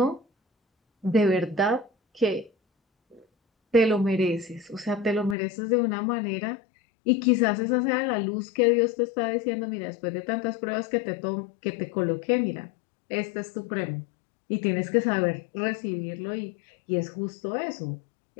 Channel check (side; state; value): right; drops out; at 5.4 s